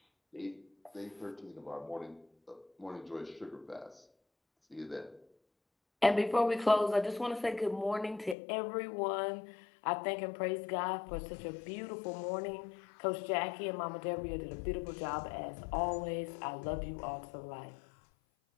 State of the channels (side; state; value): right; drops out; at 8.3 s